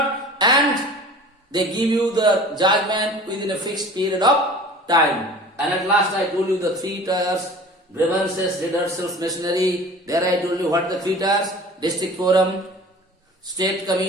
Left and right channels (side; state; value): both; normal; correlation 0.42